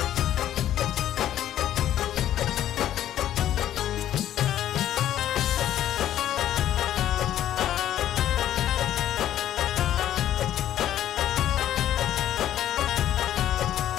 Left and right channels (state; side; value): quieter; right; 11.8 dB